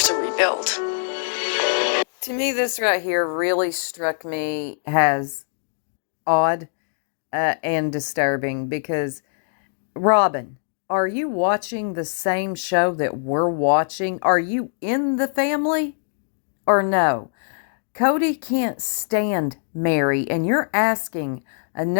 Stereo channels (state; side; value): silent; right; digital silence